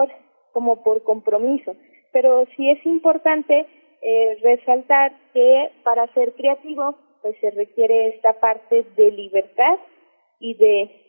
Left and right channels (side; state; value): both; inverted; correlation -1.00